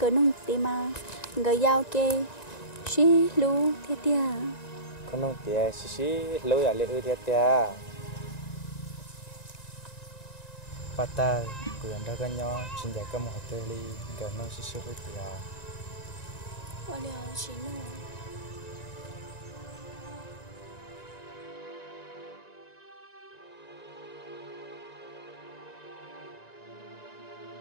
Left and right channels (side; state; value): right; late; 1.9 ms